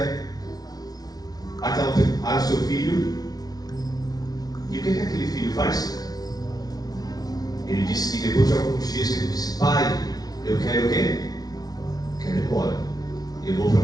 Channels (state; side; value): late; right; 0.19 ms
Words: ao seu filho. E o que aquele filho faz? Ele disse que depois de alguns dias ele disse: pai, eu quero o quê? Quero ir embora. Eu vou para